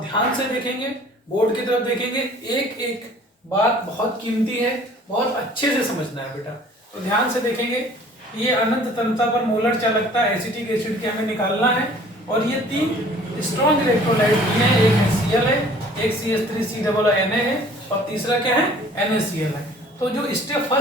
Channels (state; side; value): normal; both; correlation 0.52